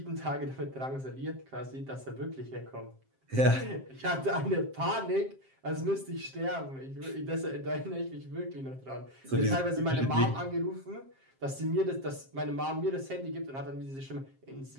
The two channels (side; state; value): left; late; 7.5 ms